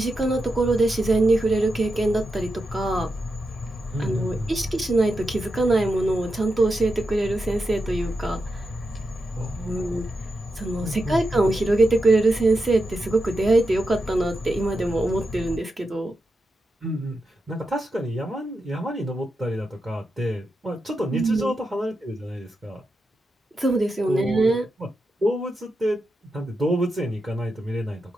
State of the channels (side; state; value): both; normal; correlation 0.88